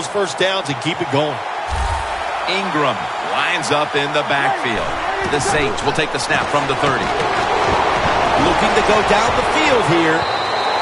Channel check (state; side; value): identical; both; correlation 1.00